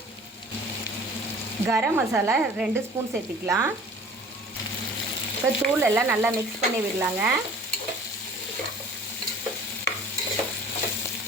கரம் மசாலா 2 ஸ்பூன் சேர்த்திக்கலாம். இப்போ தூள் எல்லாம் நல்லா மிக்ஸ் பண்ணி விடலாங்க.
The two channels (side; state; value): both; normal; correlation 0.47